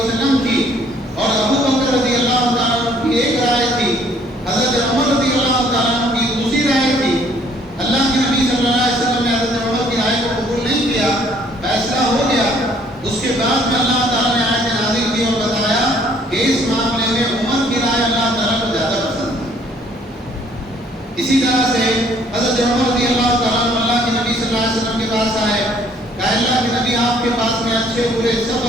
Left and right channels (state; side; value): normal; both; correlation 0.61